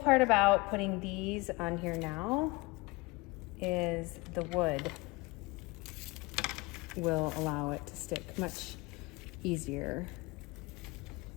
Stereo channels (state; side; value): quieter; right; 24.0 dB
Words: about putting these on here now is the wood will allow it to stick much easier,